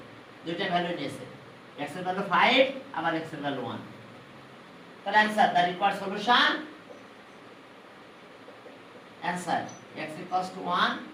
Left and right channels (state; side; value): identical; both; correlation 1.00